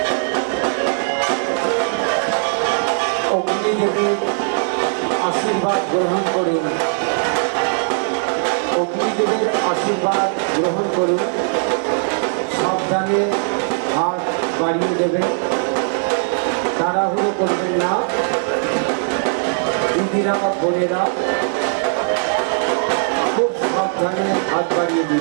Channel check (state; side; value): silent; left; 66 dB below the other